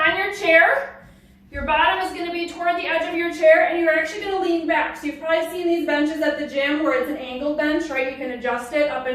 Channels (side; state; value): both; identical; correlation 1.00